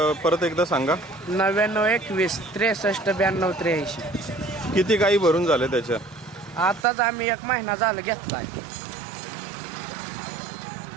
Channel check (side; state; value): left; drops out; at 6.9 s